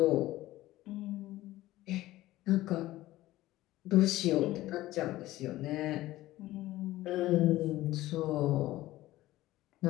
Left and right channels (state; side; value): quieter; right; 16.4 dB